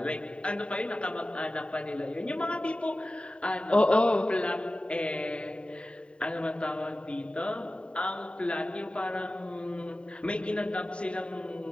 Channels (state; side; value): late; right; 0.056 ms